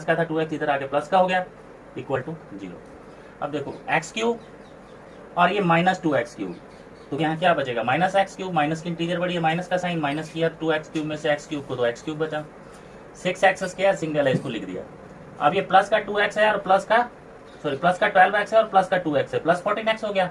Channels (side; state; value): both; identical; correlation 1.00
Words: का था 2x इधर आके प्लस का हो गया इक्वल टू 0। अब देखो x³ और ये -2x³, तो यहाँ क्या बचेगा, -x³, माइनस की इंटीजर बड़ी है, माइनस का साइन, माइनस किया 2x³ में से x³ को, तो x³ बचा, 6x स्क्वायर सिंगल है, इसको लिख दिया। अब ये प्लस का 2x है और प्लस का 12x है और प्लस का 2x है, प्लस 14x हो गया।